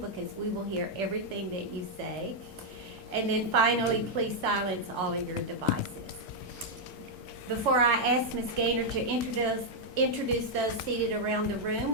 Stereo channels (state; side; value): normal; both; correlation -0.02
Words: because we will hear everything that you say. And then finally, please silence all of your devices. Before I ask Ms. Gaynor to introduce those seated around the room,